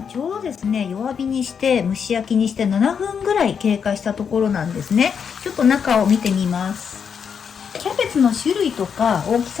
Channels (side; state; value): right; quieter; 6.9 dB